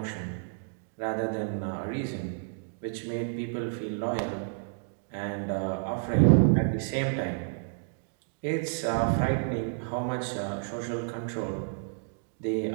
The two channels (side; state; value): left; silent; digital silence